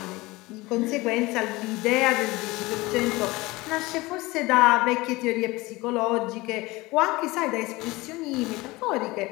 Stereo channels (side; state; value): right; quieter; 21.5 dB